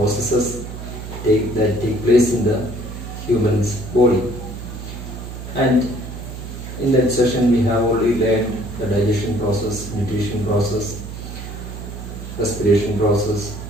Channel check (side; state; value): right; noise; hum, 10 dB below the sound